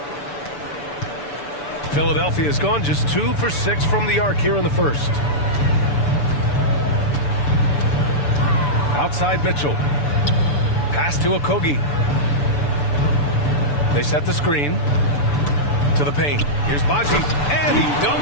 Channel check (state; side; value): late; right; 6.9 ms